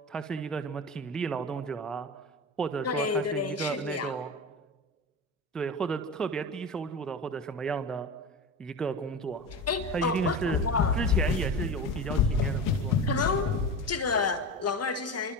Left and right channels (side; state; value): both; normal; correlation 0.26